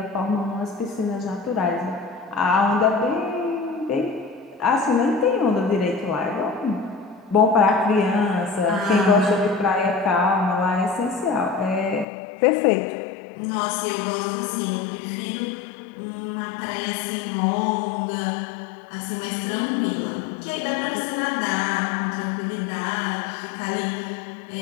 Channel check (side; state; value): right; drops out; at 12.1 s